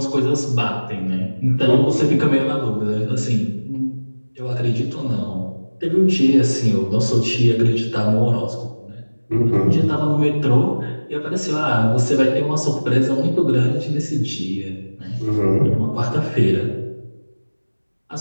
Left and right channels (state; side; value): inverted; both; correlation -1.00